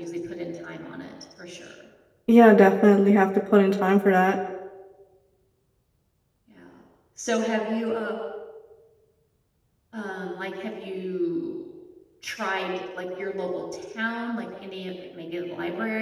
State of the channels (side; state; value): both; identical; correlation 1.00